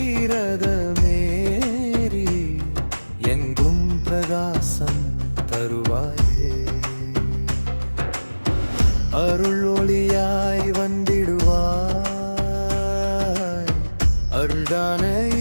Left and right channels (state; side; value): inverted; both; correlation -1.00